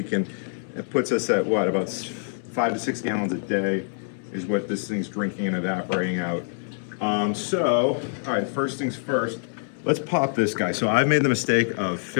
and it puts us at what, about 5 to 6 gallons a day is what this thing's drinking and evaporating out. All right, first things first, let's pop this guy. So I've made the mistake of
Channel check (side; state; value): right; silent; 62 dB below the other